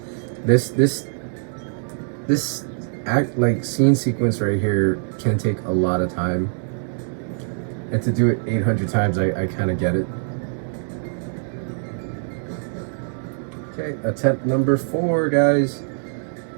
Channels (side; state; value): left; silent; digital silence